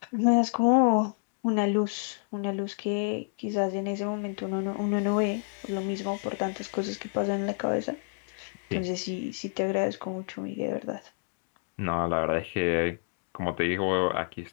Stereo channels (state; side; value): silent; right; digital silence